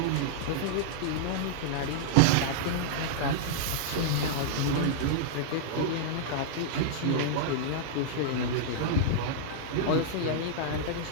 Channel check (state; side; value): different; both; correlation -0.01